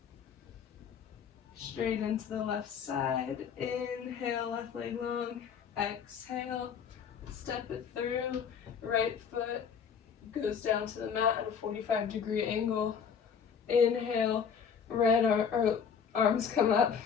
straight into the left side. Inhale, left leg long. Exhale, step it through. Right foot goes down to the mat at a 45-degree angle. Inhale, arms come up.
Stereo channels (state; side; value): quieter; right; 7.0 dB